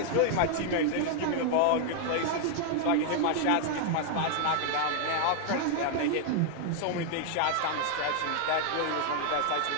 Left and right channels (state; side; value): different; both; correlation 0.00